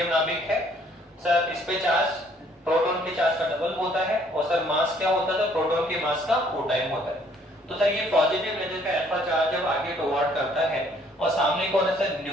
नाभिक है सर, इस पे चार्ज प्रोटॉन के चार्ज का डबल होता है, और सर मास क्या होता है, तो प्रोटॉन के मास का 4 टाइम होता है। तो सर ये पॉजिटिव लेजर का अल्फा चार्ज जब आगे टुवर्ड करता है, और सामने कौन है सर,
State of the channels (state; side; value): normal; both; correlation 0.62